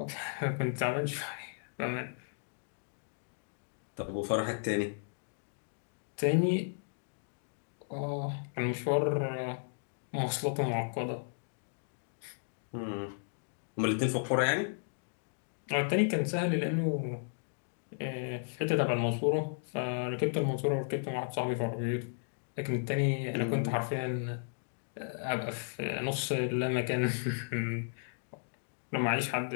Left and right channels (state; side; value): silent; right; digital silence